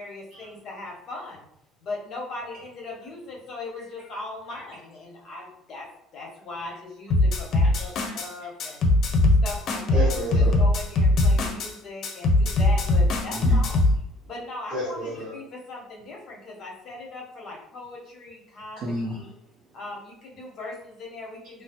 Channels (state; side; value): normal; both; correlation 0.56